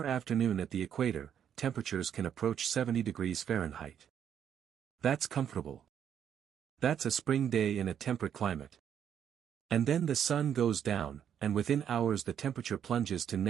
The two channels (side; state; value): left; quieter; 8.9 dB